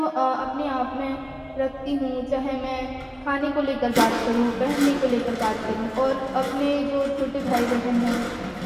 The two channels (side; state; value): both; identical; correlation 1.00